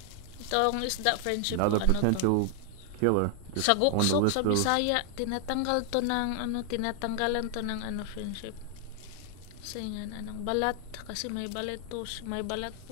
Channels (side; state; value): both; different; correlation 0.00